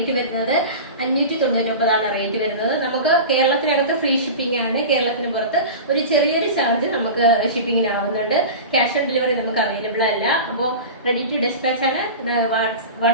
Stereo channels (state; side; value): inverted; both; correlation -0.30